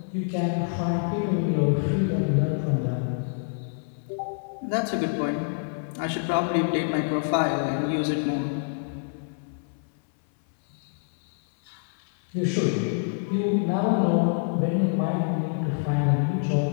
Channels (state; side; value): silent; right; 59 dB below the other